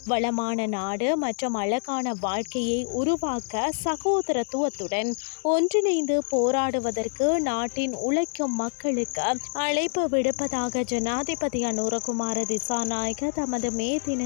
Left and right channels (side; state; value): right; silent; digital silence